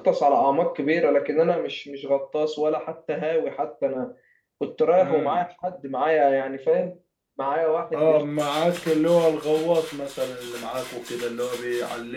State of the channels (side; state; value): both; identical; correlation 1.00